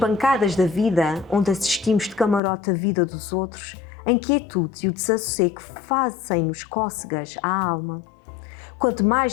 da vida, onde assistimos de camarote a vida dos outros, a inquietude e o desassossego fazem-nos cócegas à alma. Quanto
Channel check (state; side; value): drops out; right; at 2.4 s